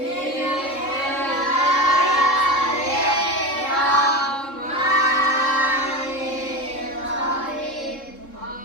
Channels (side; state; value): right; late; 3.7 ms